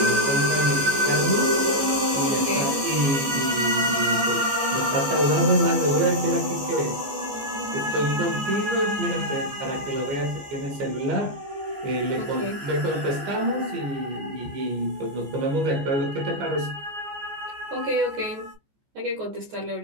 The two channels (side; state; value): left; late; 14 ms